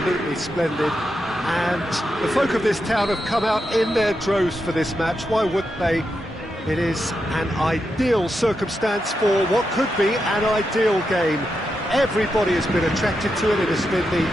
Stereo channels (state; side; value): normal; both; correlation 0.86